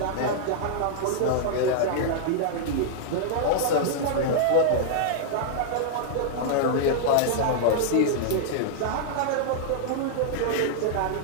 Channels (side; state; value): both; different; correlation -0.02